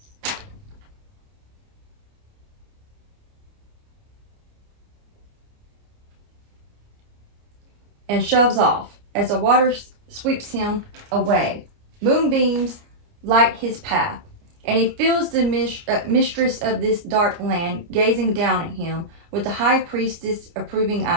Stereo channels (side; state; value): left; late; 29 ms